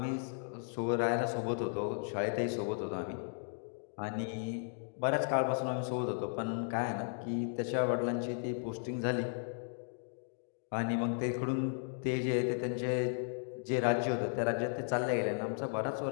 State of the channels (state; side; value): silent; right; digital silence